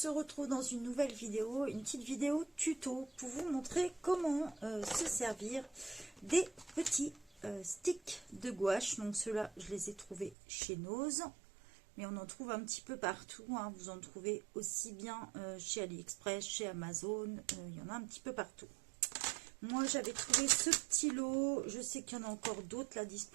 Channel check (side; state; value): left; drops out; at 10.4 s